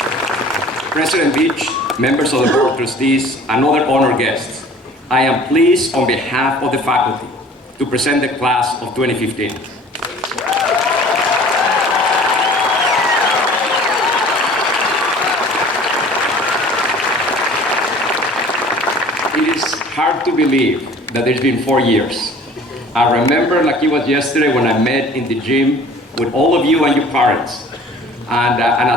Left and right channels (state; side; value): normal; both; correlation 0.48